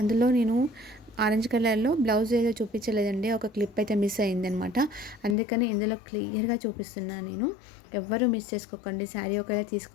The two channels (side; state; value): right; drops out; at 5.4 s